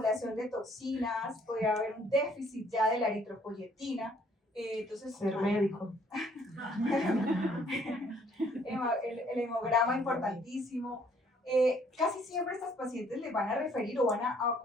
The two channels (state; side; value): normal; both; correlation 0.62